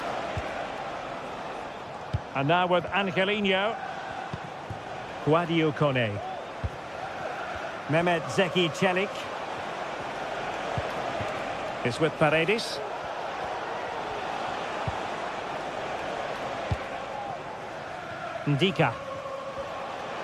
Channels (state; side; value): identical; both; correlation 1.00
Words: And now with Angelino. Guadio Kone. Mehmet Zeki Çelik. It's with Paredes. Ndika.